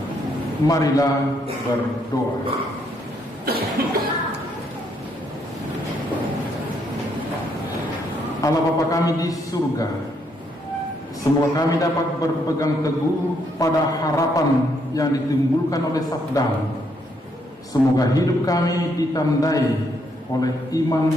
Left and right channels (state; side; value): normal; both; correlation 0.73